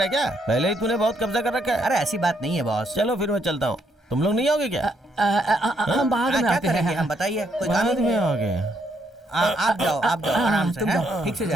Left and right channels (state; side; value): normal; both; correlation 0.74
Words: है क्या? पहले ही तूने बहुत कब्जा कर रखा है। अरे ऐसी बात नहीं है बॉस। चलो फिर मैं चलता हूँ। तुम लोग नहीं आओगे क्या? हम बाद में आते हैं। हम बताइए, कोई काम बाद नहीं में है। आओगे? आप जाओ आराम से, हैं? ठीक से